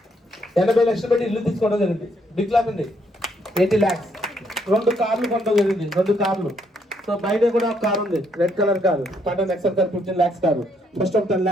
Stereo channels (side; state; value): both; normal; correlation 0.72